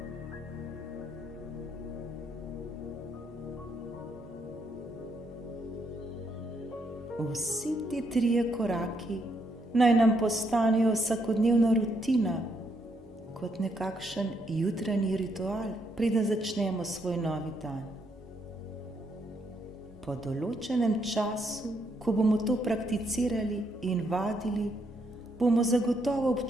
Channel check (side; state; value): both; normal; correlation 0.75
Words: Vsi ti 3 koraki naj nam postanejo vsakodnevna rutina, kot nekakšen jutranji ritual, preden začnemo svoj novi dan. Po določenem času, ko bomo to prakticirali in vadili, bomo zagotovo